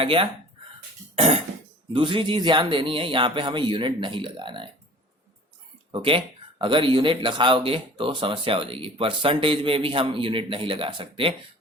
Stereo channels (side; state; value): both; normal; correlation 0.45